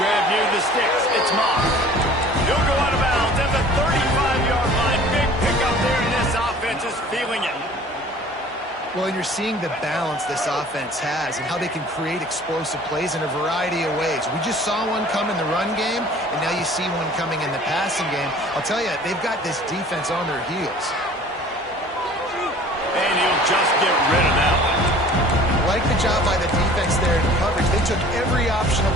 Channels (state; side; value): normal; both; correlation 0.48